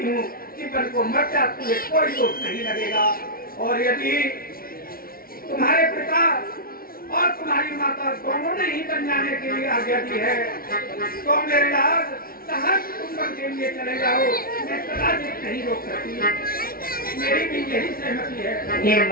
हूँ कि बन को मर जा, तुम्हें कोई दोष नहीं लगेगा। और यदि तुम्हारे पिता और तुम्हारी माता दोनों ने ही बन जाने के लिए आज्ञा दी है तो मेरे लाल सहज तुम बन के लिए चले जाओ, मैं कदाचित नहीं रोक सकती। मेरी भी यही सहमति है। हे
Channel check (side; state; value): right; late; 0.43 ms